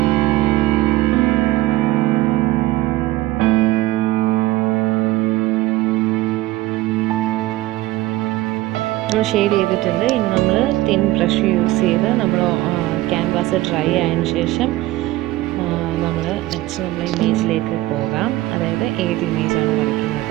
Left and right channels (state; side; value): quieter; left; 17.4 dB